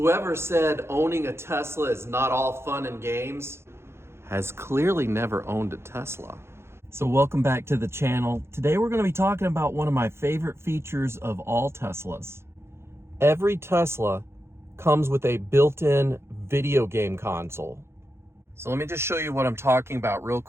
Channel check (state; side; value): late; left; 0.12 ms